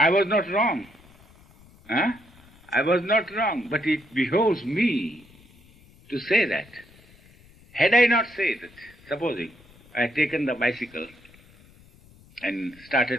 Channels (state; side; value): noise; left; rumble, 26 dB below the sound